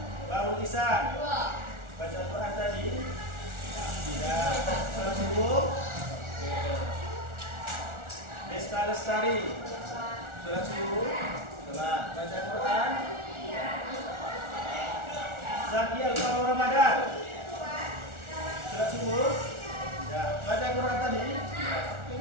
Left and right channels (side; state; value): left; late; 1.4 ms